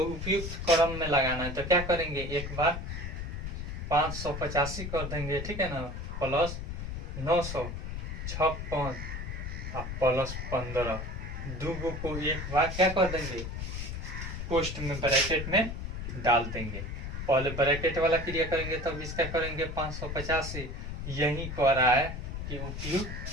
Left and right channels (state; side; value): noise; left; rumble, 6 dB below the sound